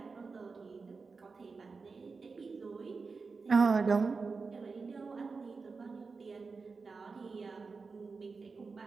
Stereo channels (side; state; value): left; quieter; 4.5 dB